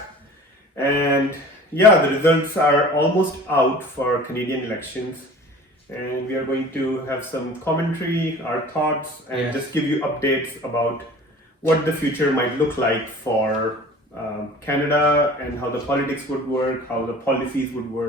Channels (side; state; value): both; normal; correlation 0.43